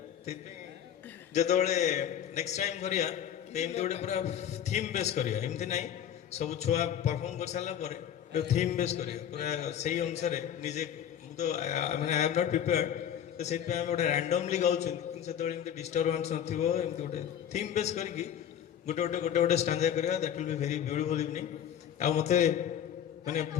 ସେଥିପାଇଁ ଯେତେବେଳେ ନେକ୍ସଟ ଟାଇମ୍ କରିବା ଏମିତି ଗୋଟେ ପୁରା ଥିମ୍ ବେସ୍ କରିବା, ଏମିତି ନାହିଁ ସବୁ ଛୁଆ ପରଫର୍ମ କରିସାରିଲା ପରେ ଥିମ୍ ବେସ୍ କରିବା, ପୁରା ସେଇ ଅନୁସାରେ ନିଜେ। ମୁଁ ତ ମାନେ ଆଇ ଏମ୍ ନଟ୍ ପ୍ରିପେୟାର୍ଡ, ତ ସେଥିପାଇଁ ଆମେ ଗୋଟେ ରାଣ୍ଡମଲି ଗାଉଛନ୍ତି, କିନ୍ତୁ ସେତେବେଳେ ଏମିତି ଡିଷ୍ଟର୍ବାନ୍ସ ନଥିବ, ଏମିତି ଗୋଟେ ଥିମ୍ ବେସ୍ କରିକି ଗୋଟେ ଗୋଟେ ଷ୍ଟାଞ୍ଜା କରିବା। That will be very beautiful evening. ଆଉ ମୋତେ ମାନେ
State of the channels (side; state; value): right; quieter; 9.5 dB